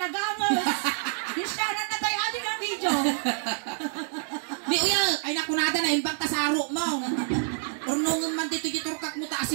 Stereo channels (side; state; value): left; silent; 60 dB below the other